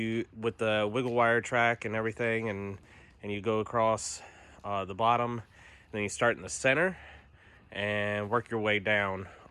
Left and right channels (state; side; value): identical; both; correlation 1.00